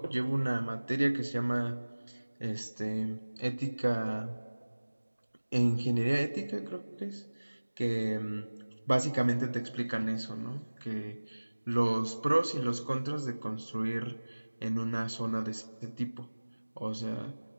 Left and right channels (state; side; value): inverted; both; correlation -1.00